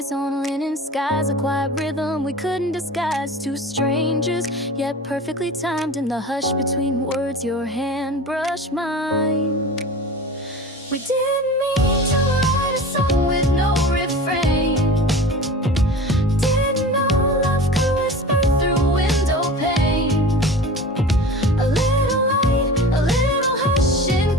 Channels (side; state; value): both; normal; correlation 0.36